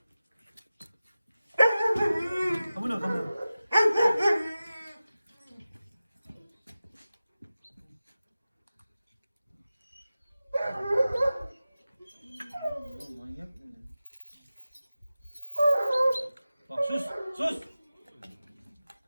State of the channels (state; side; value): inverted; both; correlation -0.95